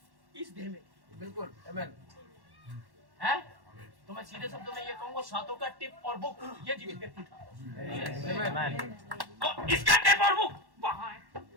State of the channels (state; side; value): late; left; 1.1 ms